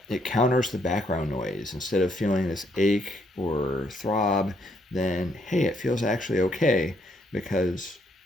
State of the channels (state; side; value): normal; both; correlation 0.72